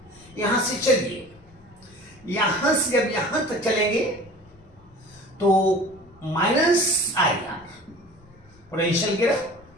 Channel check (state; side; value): noise; left; rumble, 27 dB below the sound